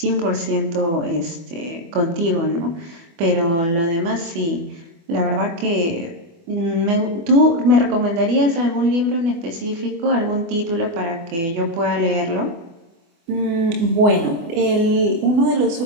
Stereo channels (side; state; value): left; late; 24 ms